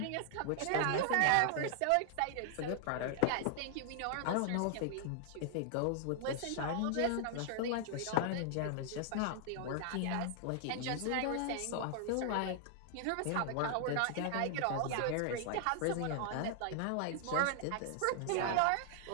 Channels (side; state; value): both; different; correlation 0.00